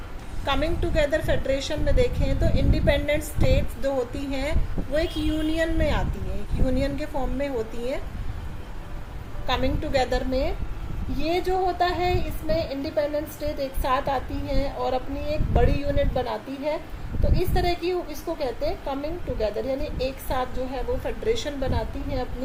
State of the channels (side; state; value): both; identical; correlation 1.00